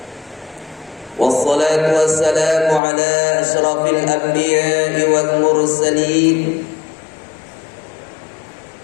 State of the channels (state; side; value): drops out; right; at 2.8 s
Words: Wassalatu wassalamu ala ashrafil anbiya'i wal mursalin